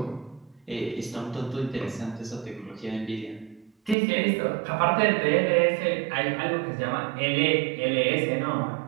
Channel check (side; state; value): left; drops out; at 4.0 s